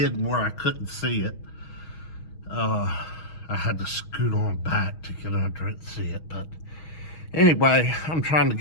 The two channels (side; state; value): right; late; 6.3 ms